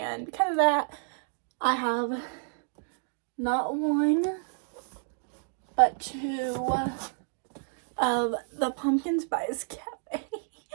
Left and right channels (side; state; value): left; silent; digital silence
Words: because of that, I have not one but two of the pumpkin spice cafe.